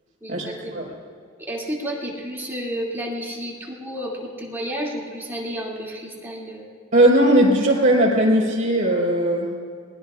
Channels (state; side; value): normal; both; correlation 0.29